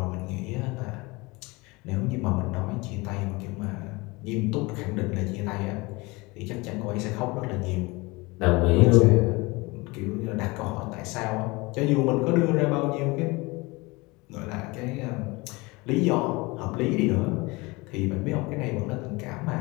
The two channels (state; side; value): quieter; right; 24.3 dB